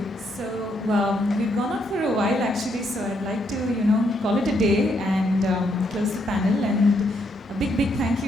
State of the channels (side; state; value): both; normal; correlation 0.75